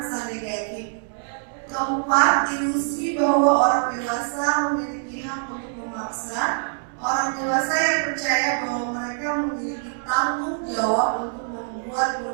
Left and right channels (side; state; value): left; silent; digital silence